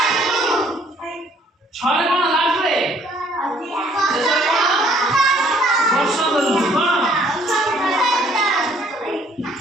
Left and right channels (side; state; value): both; normal; correlation 0.61